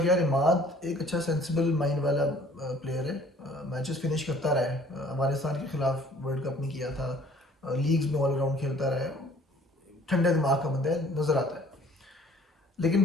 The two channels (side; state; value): both; normal; correlation 0.55